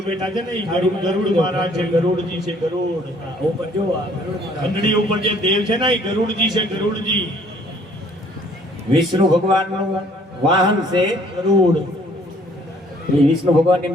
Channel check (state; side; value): normal; both; correlation 0.59